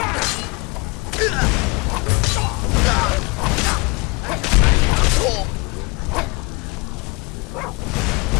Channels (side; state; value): right; quieter; 27.3 dB